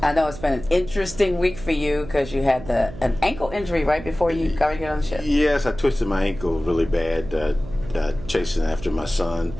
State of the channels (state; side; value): noise; right; hum, 13 dB below the sound